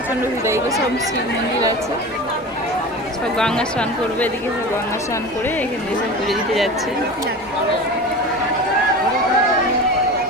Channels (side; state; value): both; normal; correlation 0.32